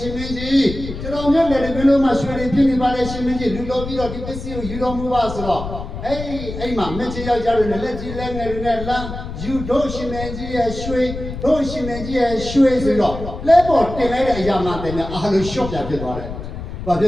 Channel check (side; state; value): left; noise; rumble, 9 dB below the sound